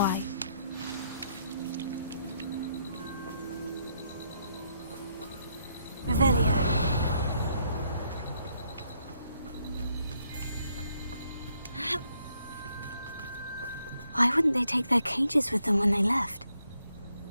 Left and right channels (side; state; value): both; inverted; correlation -0.74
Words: Revelio. Why wouldn't they take their cages with them when they left?